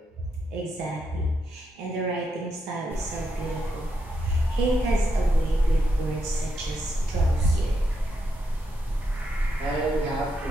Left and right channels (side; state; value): both; normal; correlation 0.82